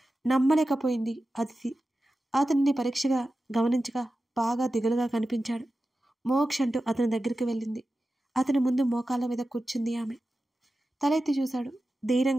నమ్మలేకపోయింది అదితి. అతన్ని పరీక్షగా గమనించగా బాగా దిగులుగా కనిపించాడు. మోక్ష్ అంటూ అతని దగ్గరికి వెళ్ళింది. అతని ముందు మోకాళ్ళ మీద కూర్చుంది ఆమె. తలెత్తి చూశాడు.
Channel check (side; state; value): both; normal; correlation 0.93